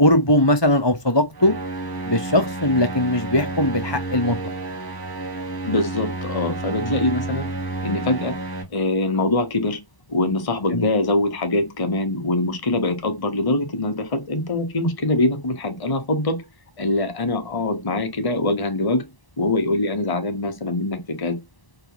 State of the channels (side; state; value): right; late; 1.0 ms